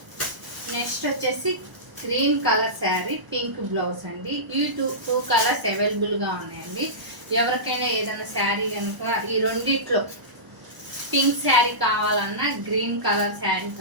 నెక్స్ట్ వచ్చేసి green colour sari, pink blouse అండి. ఈ టూ కలర్స్ అవైలబుల్గా ఉన్నాయండి. ఎవరికైనా ఏదైనా శారీ కనుక ఈ రెండిట్లో పింక్ శారీ కావాలన్నా, గ్రీన్ కలర్ శారీ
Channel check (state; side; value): late; left; 1.0 ms